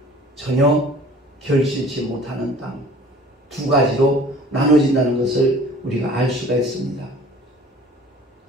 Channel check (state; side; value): normal; both; correlation 0.48